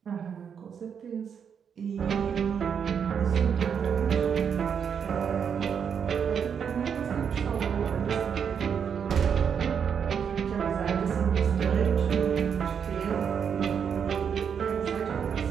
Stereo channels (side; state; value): left; quieter; 7.3 dB